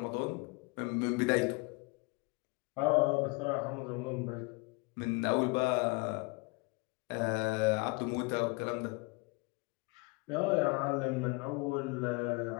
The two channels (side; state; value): right; quieter; 28.9 dB